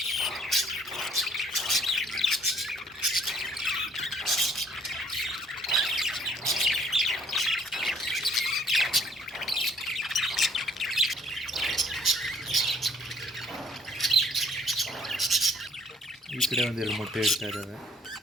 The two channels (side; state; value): both; normal; correlation 0.62